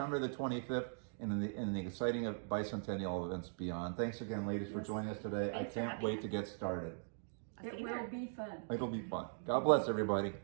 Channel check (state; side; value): silent; left; digital silence